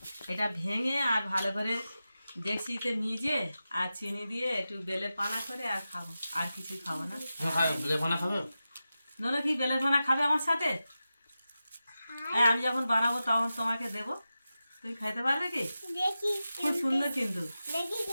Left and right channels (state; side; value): inverted; both; correlation -0.93